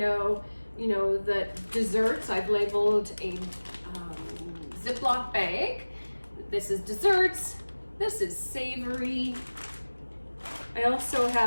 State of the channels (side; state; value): both; inverted; correlation -1.00